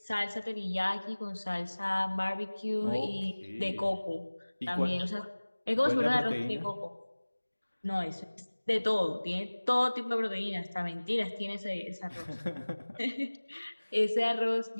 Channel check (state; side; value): inverted; both; correlation -1.00